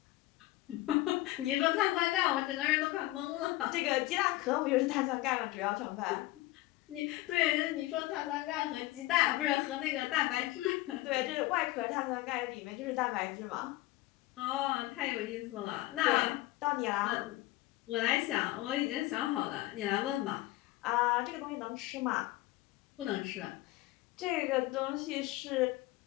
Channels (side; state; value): right; quieter; 18.3 dB